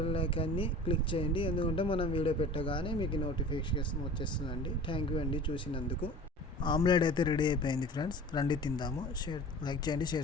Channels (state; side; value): normal; both; correlation 0.40